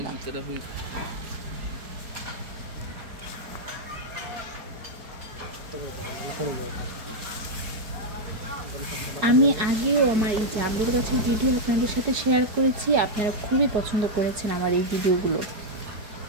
আমি আগেও আমার এই জামরুল গাছের ভিডিও আপনাদের সাথে শেয়ার করেছি। আপনারা খুবই পছন্দ করেছেন আমার এই ভিডিওগুলো।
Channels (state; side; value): late; left; 4.7 ms